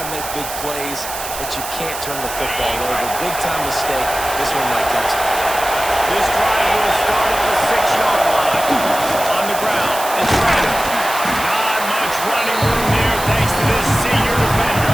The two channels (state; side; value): noise; right; hiss, 8 dB below the sound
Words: to make big plays, but you can't turn the football over. Big-time mistake. This one might cost them. This drive will start at the 6-yard line. On the ground, it's Randall. Not much running room there thanks to this senior defender.